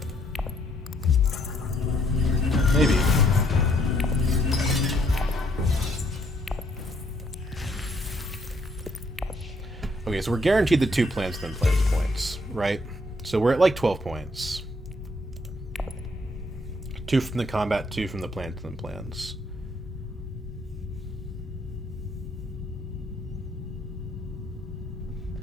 Maybe. Okay, so we're guaranteed the 2 plans within plans points, right? So we're at like 12 points. 2 from the combat, 2 from the plans within plans.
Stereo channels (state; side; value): normal; both; correlation 0.69